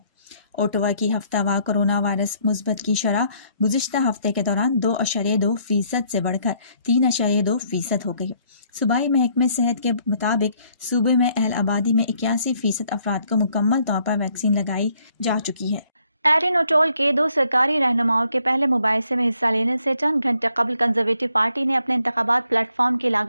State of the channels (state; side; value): inverted; both; correlation -0.68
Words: ओटावा की हफ्तावार कोरोना वायरस मुस्बत की शरह गुज़िश्ता हफ्ते के दौरान 2.2% से बढ़कर 3.2% हो गई। सूबाई महकमे सेहत के मुताबिक सूबे में अहल आबादी में 81% अफराद को मुकम्मल तौर पर वैक्सीन लगाई जा चुकी है। एरिन ओटोल के 2 सरकारी रहनुमाओं के पहले मुबाहिसे में हिस्सा लेने से चंद घंटे कबल कंजर्वेटिव पार्टी ने अपने इंतखाबात प्लेटफॉर्म की